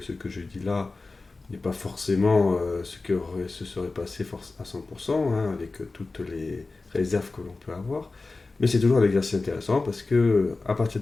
que je dis là n'est pas forcément ce que se serait passé à 100%, hein, avec toutes les réserves que l'on peut avoir. Mais c'est toujours un exercice intéressant parce que, à partir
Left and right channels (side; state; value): right; quieter; 3.6 dB